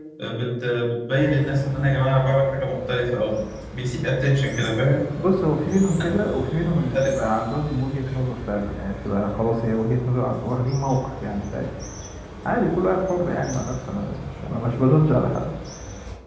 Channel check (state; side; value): identical; both; correlation 1.00